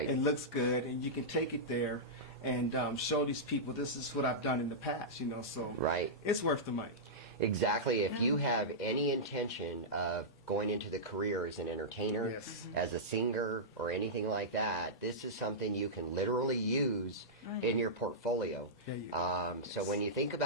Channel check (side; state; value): both; normal; correlation -0.12